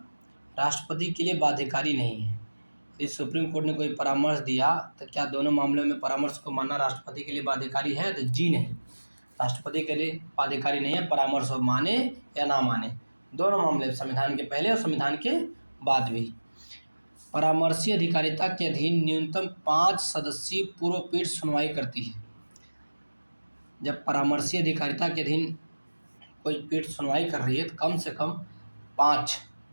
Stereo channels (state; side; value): inverted; both; correlation -1.00